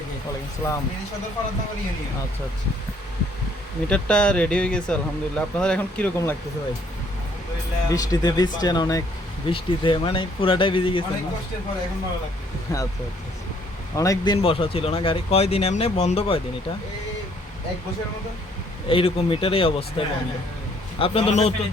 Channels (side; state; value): both; normal; correlation 0.64